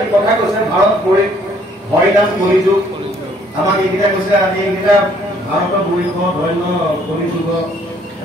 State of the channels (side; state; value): both; normal; correlation 0.63